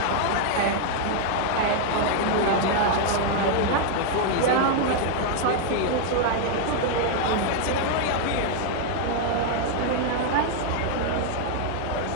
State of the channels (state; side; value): different; both; correlation 0.00